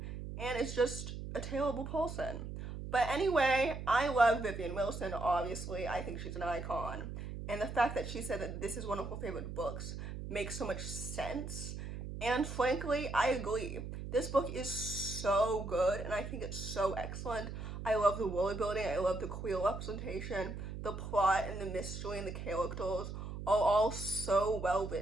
and is just a terrible person. But anyway, I love Vivian Wilson, obviously. I think she's an icon. And the fact that she said that this is one of her favorite books makes so much sense. And frankly, I agree. This book is so good, and I think it's so excellent. I love the world building, I love the queer representation, the plot and the mystery and the characters are all so well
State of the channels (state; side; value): noise; right; hum, 7 dB below the sound